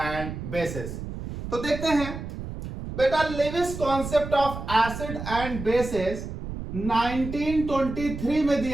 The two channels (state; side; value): noise; right; rumble, 8 dB below the sound